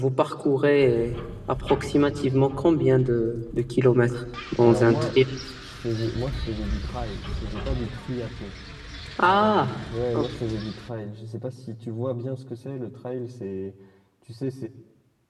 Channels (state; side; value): identical; both; correlation 1.00